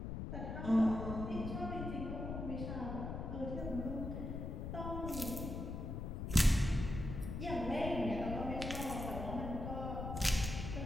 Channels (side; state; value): left; noise; rumble, 5 dB below the sound